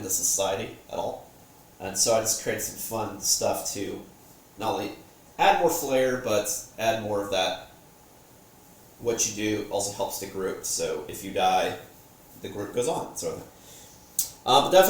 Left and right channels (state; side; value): identical; both; correlation 1.00